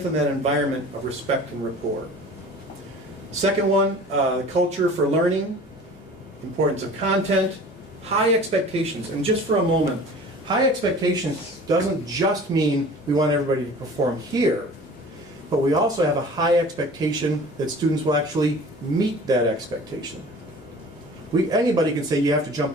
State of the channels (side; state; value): both; normal; correlation 0.43